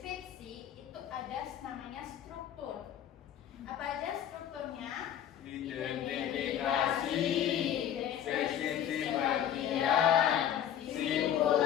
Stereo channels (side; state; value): right; quieter; 10.1 dB